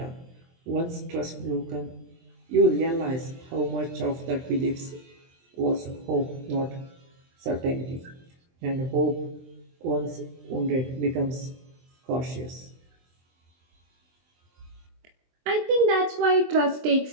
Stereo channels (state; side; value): late; left; 23 ms